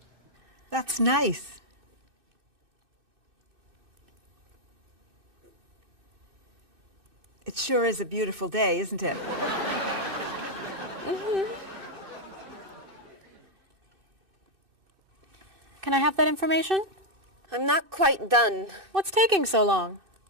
That's nice. It sure is a beautiful day, isn't it? Can I have that information? I'm not quite done. What's taking so long?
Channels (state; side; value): late; left; 2.6 ms